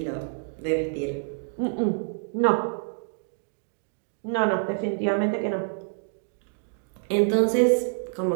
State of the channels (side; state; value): left; silent; digital silence